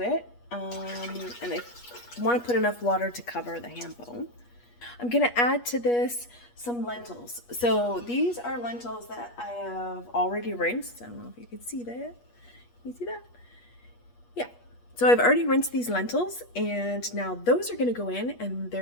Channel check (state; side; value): late; right; 8.3 ms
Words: it, and I want to put enough water to cover the ham bone. I'm going to add to this some lentils. So these are lentils that I have already rinsed. I don't know if you can see that. Can you see that? Yeah. So I've already rinsed these lentils, and now those are going to go in and